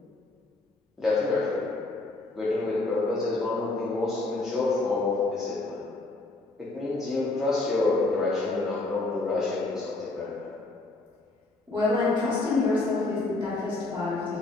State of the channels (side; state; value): right; quieter; 3.1 dB